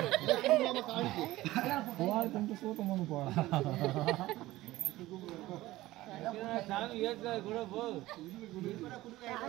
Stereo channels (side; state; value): left; quieter; 17.3 dB